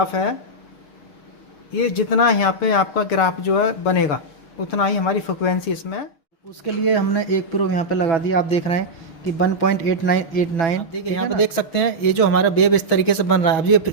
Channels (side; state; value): right; late; 6.2 ms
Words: है, ये जितना यहाँ पे आपका ग्राफ जो है बनेगा उतना ही हमारी फ्रिक्वेंसी इसमें। उसके लिए हमने एक प्रोब यहाँ पे लगा दिया, आप देख रहे हैं कि 1.8989। आप देखिए यहाँ पे देख सकते हैं ये जो हमारा वेव इस तरीके से बन रहा है। अब ये